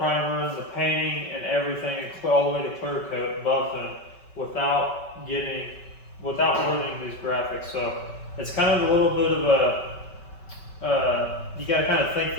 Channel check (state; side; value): late; right; 5.2 ms